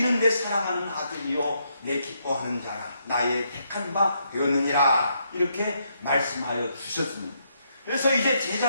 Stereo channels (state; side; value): inverted; both; correlation -0.76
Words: 사랑하는 아들이요 내 기뻐하는 자라 나의 택한 바 되었느니라 이렇게 말씀하여 주셨습니다. 그래서 이제